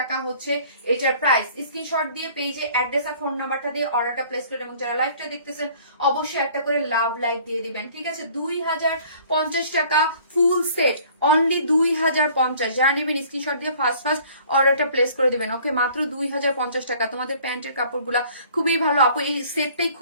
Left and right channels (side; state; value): both; inverted; correlation -0.53